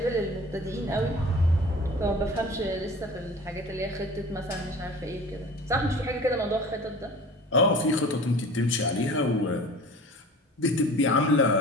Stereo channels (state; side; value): normal; both; correlation 0.41